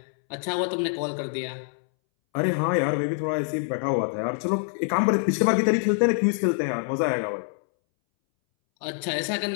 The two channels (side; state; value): right; silent; 61 dB below the other